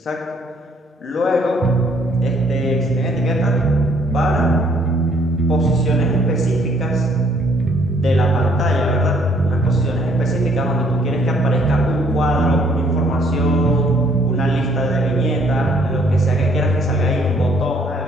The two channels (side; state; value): both; normal; correlation 0.64